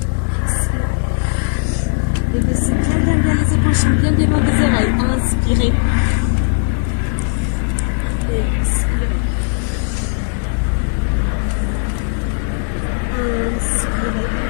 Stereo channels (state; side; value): silent; right; 68 dB below the other